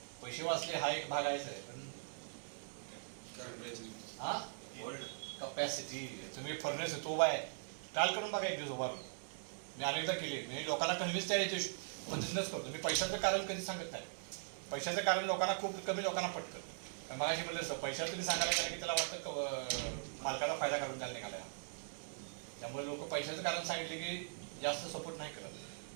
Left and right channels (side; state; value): left; silent; digital silence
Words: पैसे वाचले हा एक भाग आहेच आहे, पण हा कपॅसिटी. तुम्ही फर्नेस तो उभा आहे, ट्रायल करून बघा एक दिवस उभा. मी अनेकदा केली, मी लोकांना कन्व्हिन्स त्या पद्धतीनंच करतो. मी पैशाचं कारण कधी सांगत नाही. पैशाचं कारण लोकांना खूप कमी लोकांना पटतं. कारण मला अशी म्हणलं असतं, पैशाला तुम्ही सांगायला गेलं की त्याला वाटतं मालकाचा फायदा करून द्यायला निघाला. त्यामुळे लोक पैशाचं कारण सांगितले की जास्त सपोर्ट नाही करत.